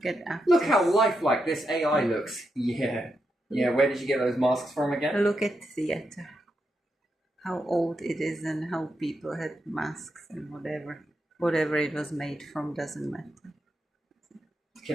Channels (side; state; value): both; normal; correlation 0.84